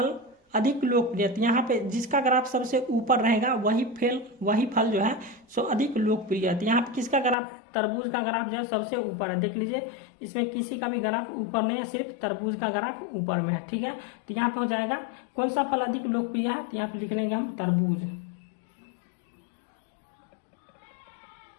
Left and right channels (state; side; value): drops out; right; at 7.4 s